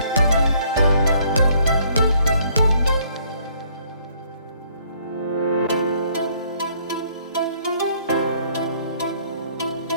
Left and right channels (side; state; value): both; inverted; correlation -0.64